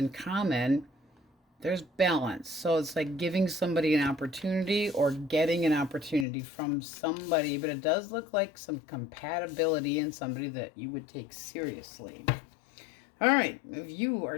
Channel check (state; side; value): drops out; right; at 6.2 s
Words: common. There's balance. So it's like giving somebody an opportunity or getting an opportunity from somebody, but it does look like some compatibility in somebody that you would take seriously. All right, if you